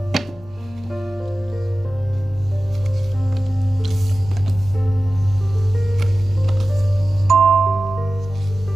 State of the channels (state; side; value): normal; both; correlation 0.95